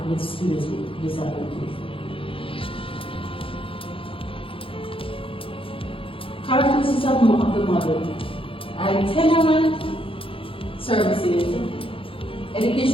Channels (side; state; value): right; late; 0.26 ms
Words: with students with disabilities. Characteristics of the model: itinerant services.